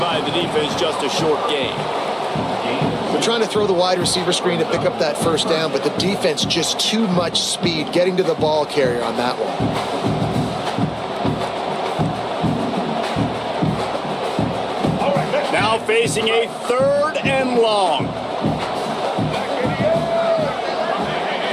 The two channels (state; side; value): identical; both; correlation 1.00